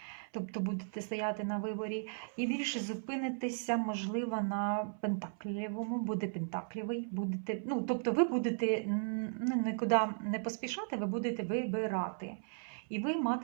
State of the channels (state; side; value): silent; left; 54 dB below the other